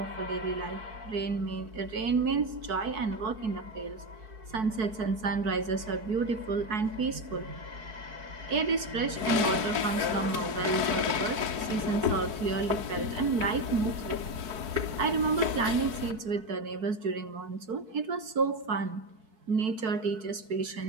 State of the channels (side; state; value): left; late; 4.6 ms